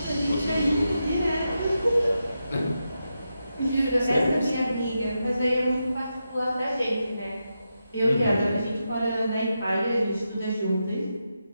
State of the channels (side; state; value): both; inverted; correlation -0.87